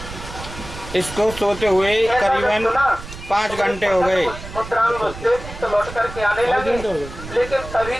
इसको सोते हुए करीबन 5 घंटे हो गए। तो लौट करके आने लगे, लेकिन तभी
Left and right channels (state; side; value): noise; right; rumble, 12 dB below the sound